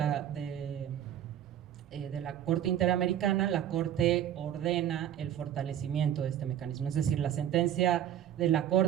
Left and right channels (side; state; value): left; quieter; 10.7 dB